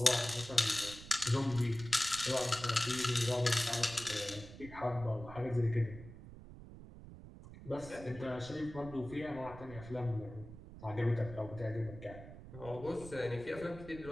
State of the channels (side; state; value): right; noise; rumble, 15 dB below the sound